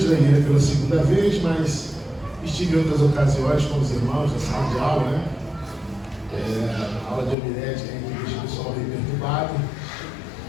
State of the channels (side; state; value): right; drops out; at 7.4 s